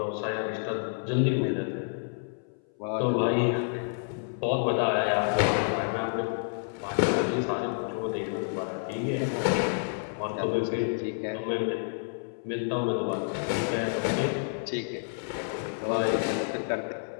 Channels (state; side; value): silent; right; 58 dB below the other